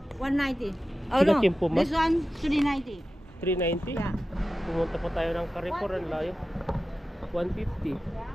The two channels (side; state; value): both; normal; correlation 0.94